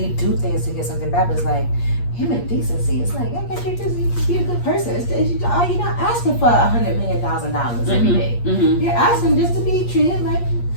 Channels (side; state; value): right; late; 8.5 ms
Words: do things to get something bad, but it's like human decency. It's like, you just be a good person. You're not asking for $100 million every day. You're asking just to be treated like